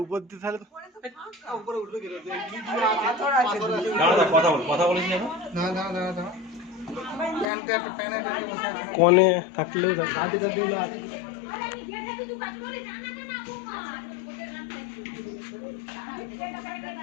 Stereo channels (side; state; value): right; drops out; at 7.5 s